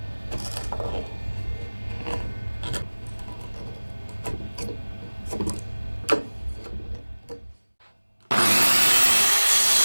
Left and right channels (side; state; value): both; inverted; correlation -1.00